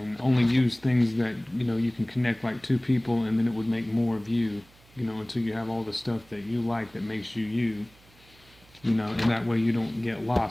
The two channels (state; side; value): noise; right; hum, 28 dB below the sound